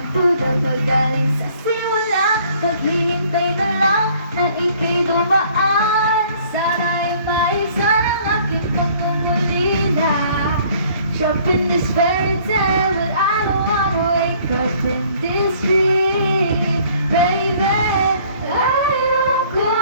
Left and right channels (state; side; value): inverted; both; correlation -0.57